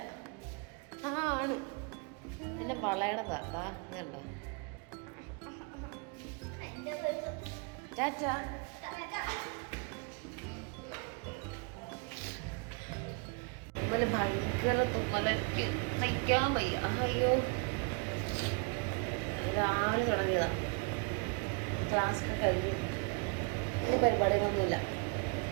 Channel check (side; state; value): left; quieter; 33.4 dB